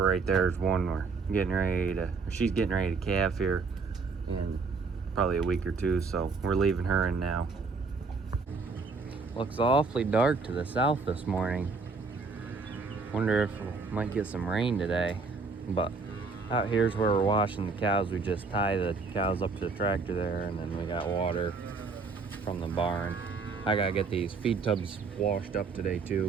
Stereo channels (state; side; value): quieter; left; 4.4 dB